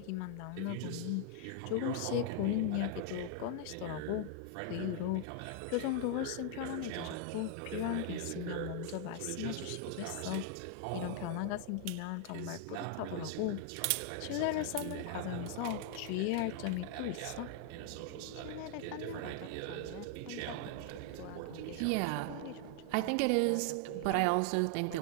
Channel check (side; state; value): both; different; correlation 0.00